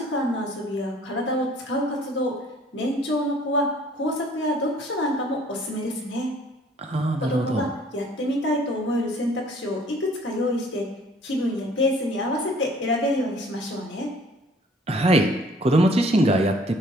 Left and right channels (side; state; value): both; normal; correlation 0.56